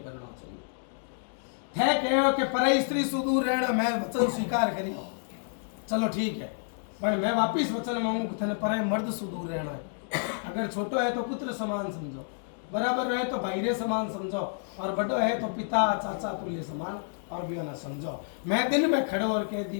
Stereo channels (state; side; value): silent; right; digital silence